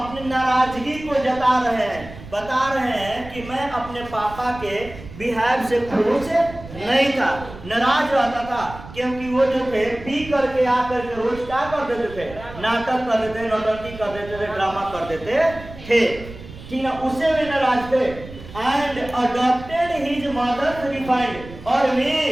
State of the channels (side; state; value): right; noise; rumble, 15 dB below the sound